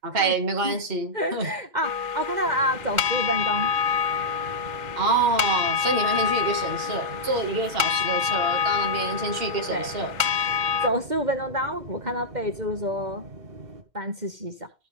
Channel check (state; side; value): late; left; 2.1 ms